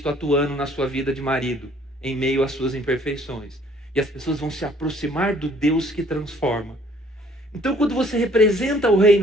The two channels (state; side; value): normal; both; correlation 0.59